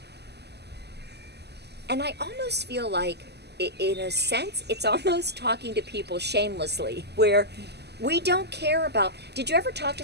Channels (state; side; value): late; left; 0.49 ms